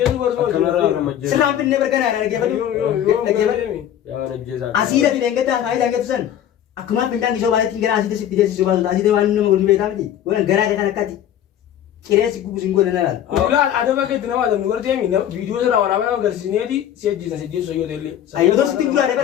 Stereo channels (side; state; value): right; quieter; 10.7 dB